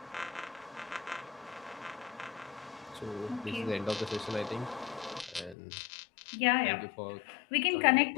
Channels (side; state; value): right; drops out; at 5.6 s